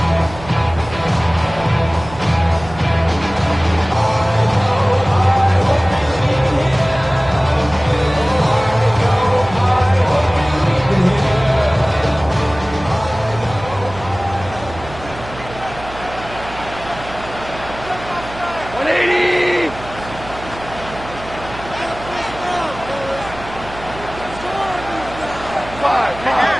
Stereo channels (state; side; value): noise; right; hum, 14 dB below the sound